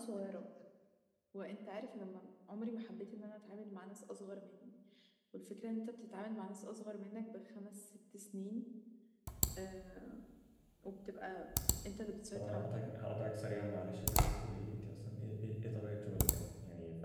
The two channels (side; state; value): both; identical; correlation 1.00